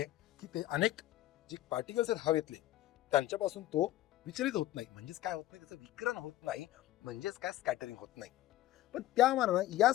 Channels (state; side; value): quieter; right; 14.8 dB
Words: की ते अनेक जे पार्टिकल्स आहेत हवेतले त्यांच्यापासून तो विचलित होत नाही. म्हणजेच काय होत नाही, त्याचं विकिरण होत नाही, म्हणजेच काय स्कॅटरिंग होत नाही. पण त्या मानानं या